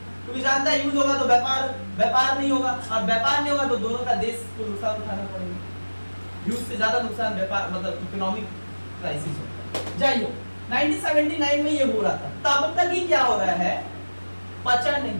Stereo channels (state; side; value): inverted; both; correlation -1.00